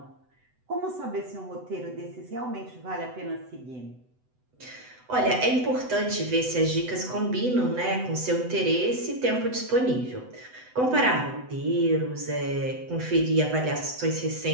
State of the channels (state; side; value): late; left; 8.0 ms